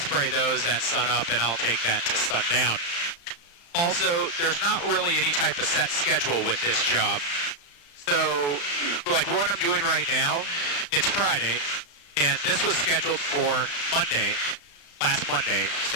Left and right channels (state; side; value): late; right; 35 ms